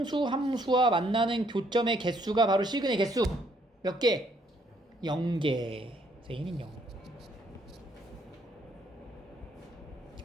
함수와 만나는 교점의 개수가 바로 시그널 개수 몇 개? 0개. 그래서 a는 0.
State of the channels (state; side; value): normal; both; correlation 0.68